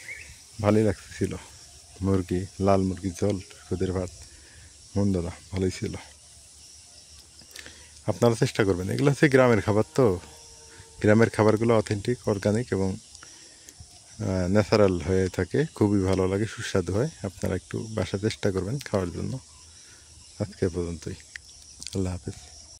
ভালোই লাগতেছিল। মুরগি, লাল মুরগির ঝোল, খুদের ভাত, মন্দ না, ভালোই ছিল। আপনারা চেষ্টা করবেন, এগুলো হচ্ছে গ্রামের খাবার তো, গ্রামের খাবারগুলো অথেন্টিক, অর্গানিক এবং ন্যাচারাল হয়ে থাকে, খুবই ভালো লাগে, সুস্বাদু হয়। আপনারা একটু বাসা চেষ্টা করবেন খাওয়ার জন্য। আজকে পর্যন্তই, আল্লাহ হাফেজ।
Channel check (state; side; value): identical; both; correlation 1.00